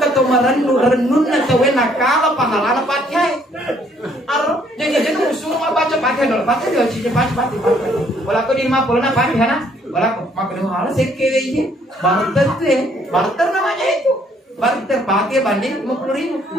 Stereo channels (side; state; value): both; normal; correlation 0.65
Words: renun na tawe nakala pahalana pakai jadi musuh mah baca pakai dulu pakai dulu cici pakai wala aku di 50 na pakai na wala aku makan hal sekele ini barter namanya itu barter pakai banding 50.000